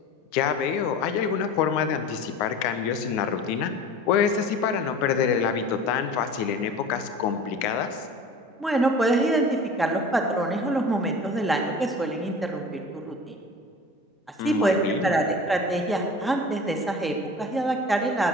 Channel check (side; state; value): both; normal; correlation 0.39